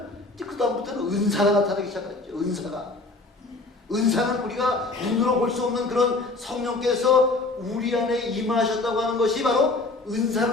이제 그 다음부터는 은사가 나타나기 시작하죠. 은사는 우리가 눈으로 볼 수 없는 그런 성령께서 우리 안에 임하셨다고 하는 것이 바로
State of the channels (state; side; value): quieter; right; 3.2 dB